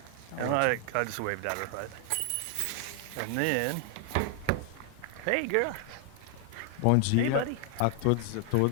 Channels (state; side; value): different; both; correlation 0.00